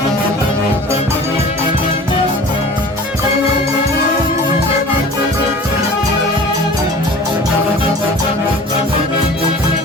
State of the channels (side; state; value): both; normal; correlation 0.42